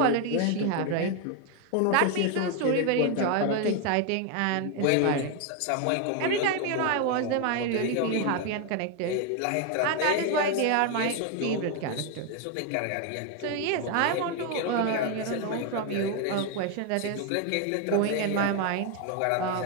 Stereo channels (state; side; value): different; both; correlation 0.01